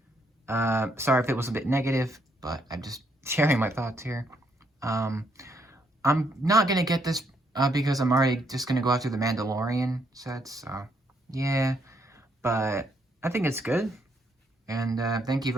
Sorry if it was a bit negative, but I'm just sharing my thoughts here. I'm not gonna get this because I'm already just gonna go after the Mandalorian sets. So yeah, but I think it's good. And thank you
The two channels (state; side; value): normal; both; correlation 0.73